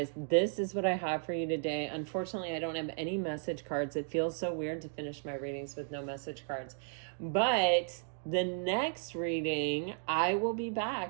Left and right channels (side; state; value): left; silent; digital silence